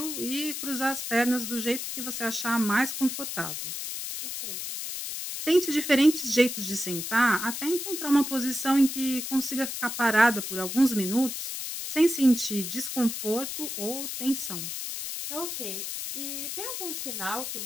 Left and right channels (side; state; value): left; noise; hiss, 5 dB below the sound